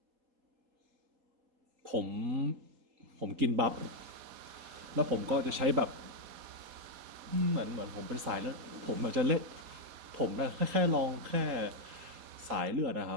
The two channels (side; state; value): left; late; 4.1 ms